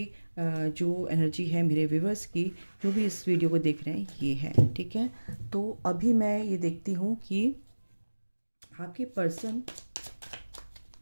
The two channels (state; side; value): inverted; both; correlation -1.00